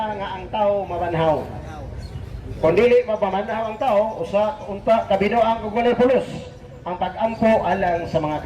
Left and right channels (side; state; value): both; identical; correlation 1.00